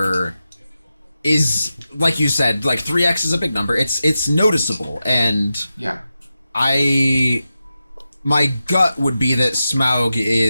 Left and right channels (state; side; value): inverted; both; correlation -0.91